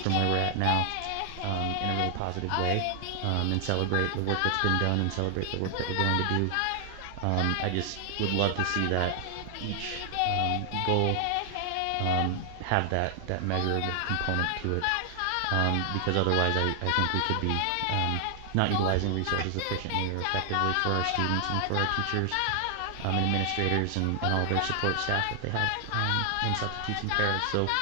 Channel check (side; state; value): both; different; correlation 0.00